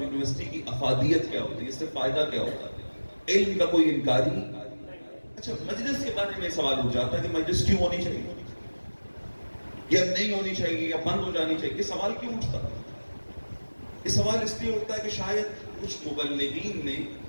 یونیورسٹی کی افادیت کیا ہوتی ہے، اس سے فائدہ کیا ہوتا ہے. علم کا کوئی انکاری. اچھا مجلس کے بارے میں سوال اٹھ جاتا ہے کہ مجلس کیوں ہونی چاہیے یا نہیں ہونی چاہیے یا بند ہو جانی چاہیے. یہ سوال کیوں اٹھتا ہے؟ یہ سوال اس لیے اٹھتا ہے کہ شاید کچھ مبلغین نے،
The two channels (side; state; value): both; inverted; correlation -1.00